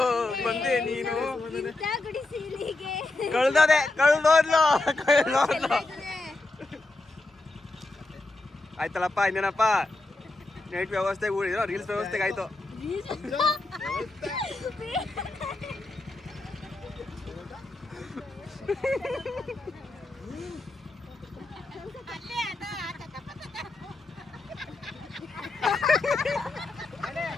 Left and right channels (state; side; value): quieter; right; 3.0 dB